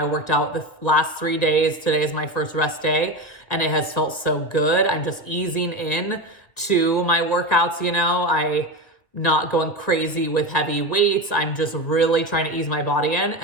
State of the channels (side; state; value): right; late; 2.0 ms